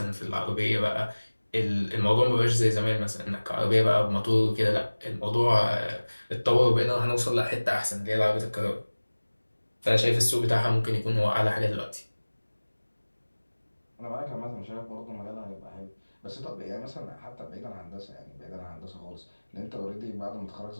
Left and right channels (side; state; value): both; inverted; correlation -1.00